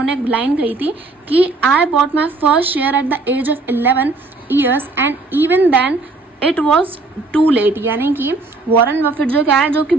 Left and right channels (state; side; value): quieter; left; 3.5 dB